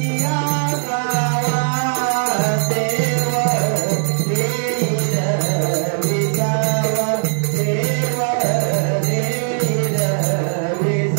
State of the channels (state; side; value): silent; left; digital silence